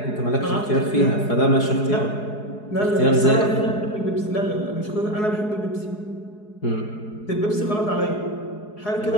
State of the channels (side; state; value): right; late; 4.8 ms